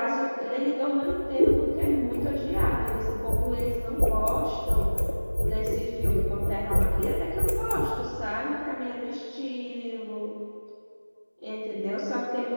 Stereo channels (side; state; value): both; inverted; correlation -1.00